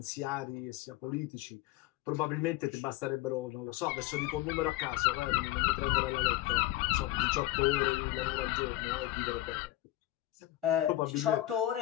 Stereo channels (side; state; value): right; quieter; 16.1 dB